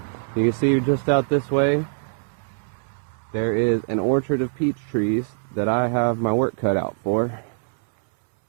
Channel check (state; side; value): silent; left; 63 dB below the other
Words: You can see just out this way there is an orchard of peach trees that I have my work cut out for.